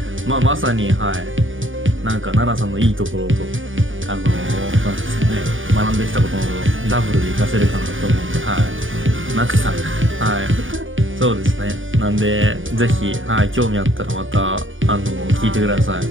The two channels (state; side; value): late; left; 0.57 ms